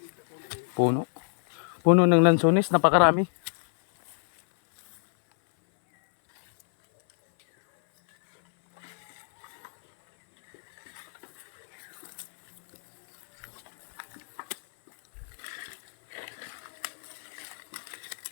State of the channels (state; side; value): silent; right; 60 dB below the other